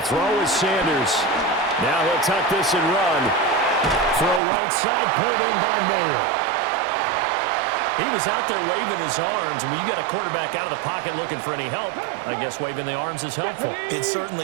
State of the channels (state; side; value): drops out; left; at 4.4 s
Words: throw is Sanders. Now he'll tuck this and run for a right side pulled in by Mayer. He was out there waving his arms, and when you got a quarterback out of the pocket looking for any help, I guess waving the arms is helpful. It